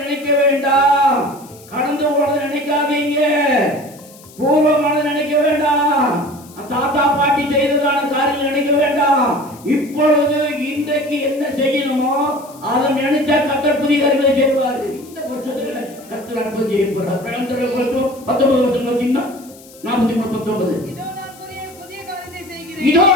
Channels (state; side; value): noise; left; hiss, 22 dB below the sound